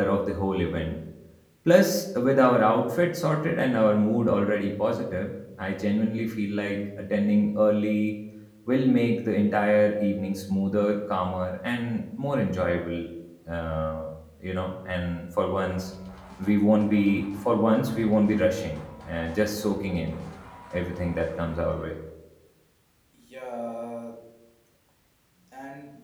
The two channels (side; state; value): both; identical; correlation 1.00